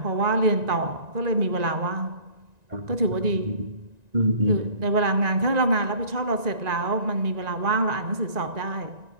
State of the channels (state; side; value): late; left; 1.9 ms